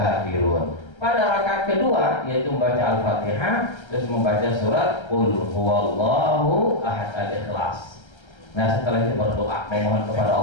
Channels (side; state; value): right; late; 1.3 ms